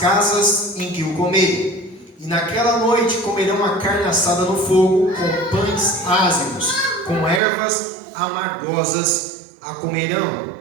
em que o comerem. E naquela noite comerão a carne assada no fogo, com pães ázimos, com ervas amargosas a comerão.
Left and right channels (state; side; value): drops out; left; at 7.4 s